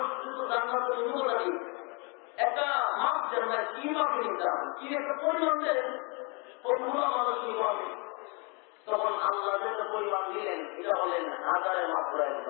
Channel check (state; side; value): quieter; right; 32.5 dB